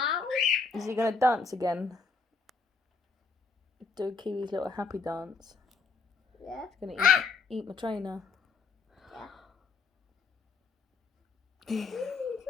Is he going to dance again? Do Kiwi's little happy dance. Yeah. He's going to eat my trainer. Yeah.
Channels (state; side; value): quieter; right; 4.5 dB